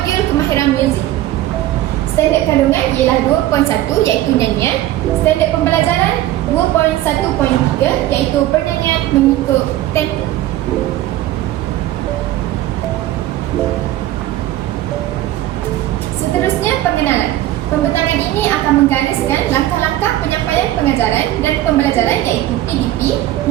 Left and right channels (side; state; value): left; quieter; 14.4 dB